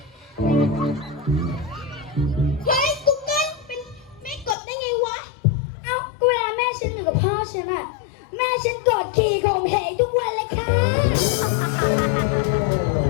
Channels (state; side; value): drops out; right; at 4.5 s